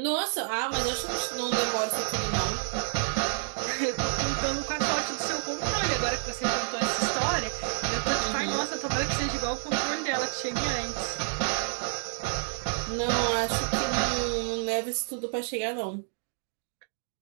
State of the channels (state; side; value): silent; left; digital silence